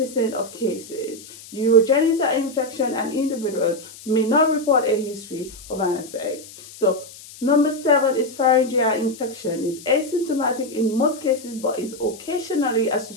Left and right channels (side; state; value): left; noise; hiss, 18 dB below the sound